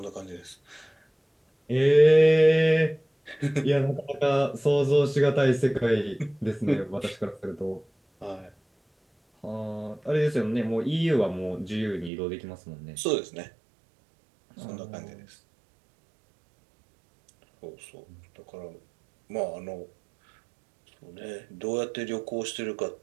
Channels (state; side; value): drops out; left; at 12.1 s